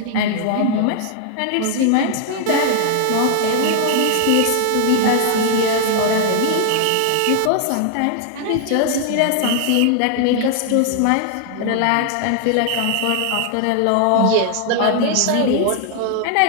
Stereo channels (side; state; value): both; different; correlation 0.00